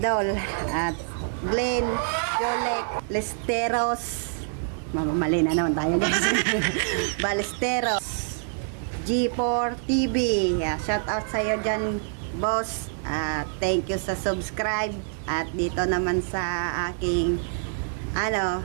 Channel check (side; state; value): left; silent; digital silence